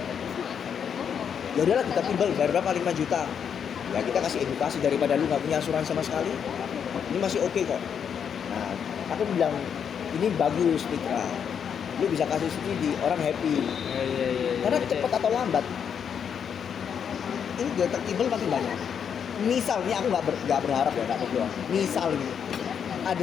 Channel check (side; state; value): right; quieter; 7.7 dB